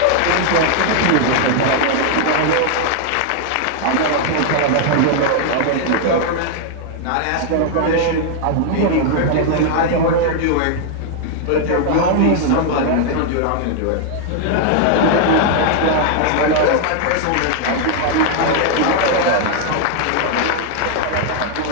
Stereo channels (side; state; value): both; different; correlation 0.00